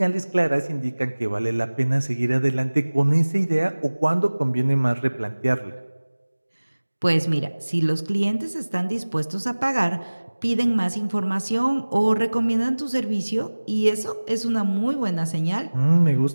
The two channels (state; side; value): inverted; both; correlation -1.00